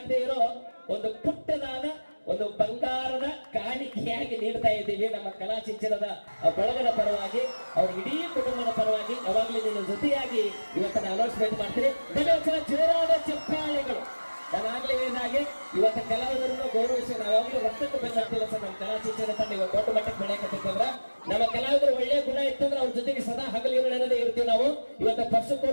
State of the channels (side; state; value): both; inverted; correlation -1.00